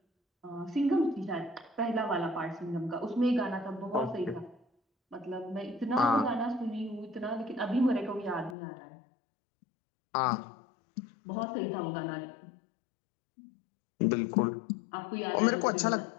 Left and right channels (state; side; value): drops out; right; at 8.6 s